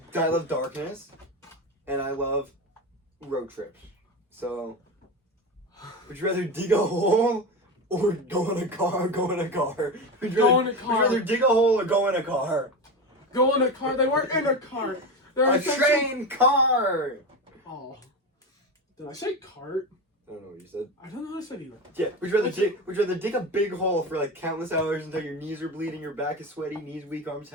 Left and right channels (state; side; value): normal; both; correlation 0.21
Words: darkness, and I love road trips. So, would you rather dig a hole or go in a car? Would you rather dig a hole or go in a car? Go in a car? They weren't in a car. They're a train car! Oh. Did I say cart? I don't know what you said. I don't know what I said either. Yeah, would you rather dig a big hole for like countless hours until your knees are bleeding, your back is sweaty, knees weak, arms